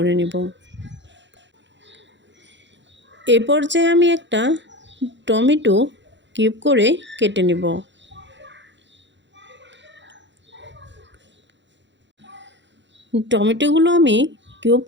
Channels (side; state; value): left; late; 0.53 ms